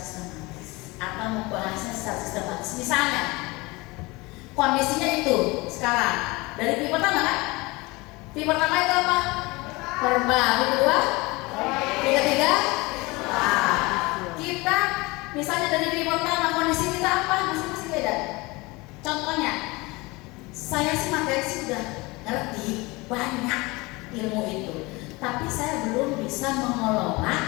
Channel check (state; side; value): quieter; right; 23.7 dB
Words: atau membahasnya secara sistematis. Misalnya, kondisinya itu sekarang dari P pertama kan? P pertama itu apa? Verbal. P kedua? P ketiga? Nah, kita misalnya dari P pertama kondisi kita apa? Masing-masing beda. Contohnya, saya sih materi sudah ngerti banyak ilmu itu, tapi saya belum bisa mengelola,